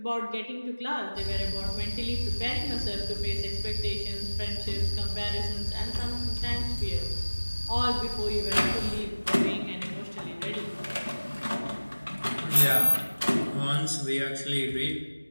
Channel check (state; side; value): inverted; both; correlation -1.00